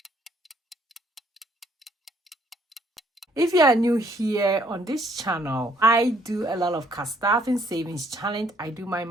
If you are new here on this channel, I do a lot of cash stuff and savings challenge. I do my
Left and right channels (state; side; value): normal; both; correlation 0.65